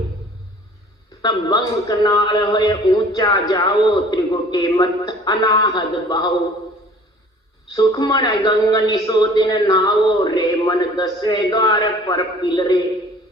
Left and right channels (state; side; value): normal; both; correlation 0.50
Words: तब बंक नाल होए ऊंचा जाओ, त्रिगुटे मत अनाहद बहाओ, सुखमन गंग निसो दिन नाओ, रे मन दसवें द्वार पर पिलरे।